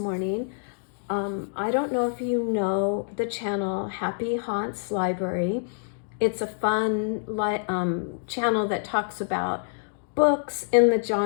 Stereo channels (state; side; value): silent; right; digital silence